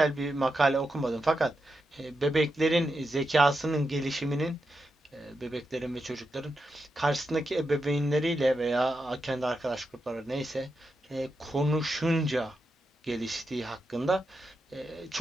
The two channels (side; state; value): both; normal; correlation 0.87